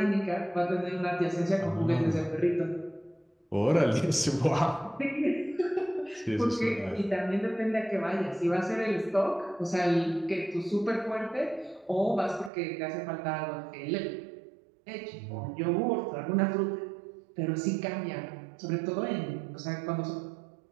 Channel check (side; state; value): left; drops out; at 12.5 s